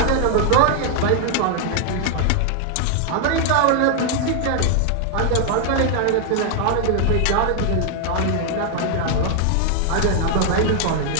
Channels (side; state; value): both; different; correlation 0.00